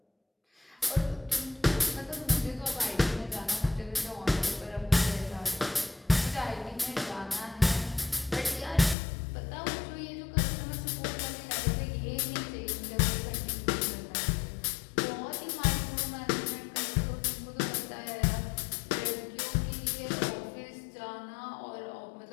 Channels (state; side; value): drops out; right; at 9.0 s